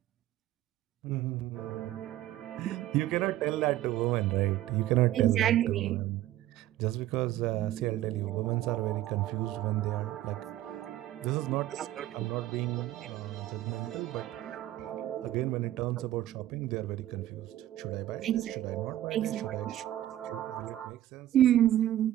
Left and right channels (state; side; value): quieter; left; 13.9 dB